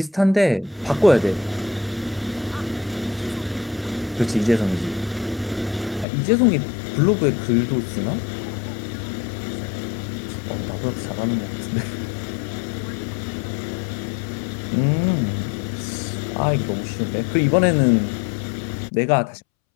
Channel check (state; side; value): drops out; right; at 6.1 s